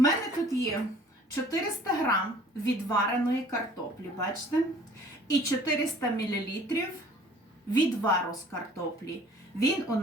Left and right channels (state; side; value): normal; both; correlation 0.52